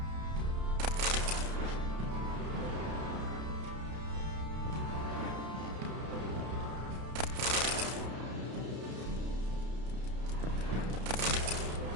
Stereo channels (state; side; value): late; left; 32 ms